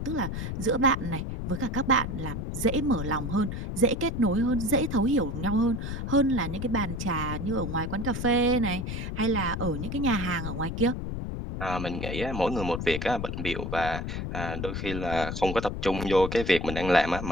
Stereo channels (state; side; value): noise; left; rumble, 4 dB below the sound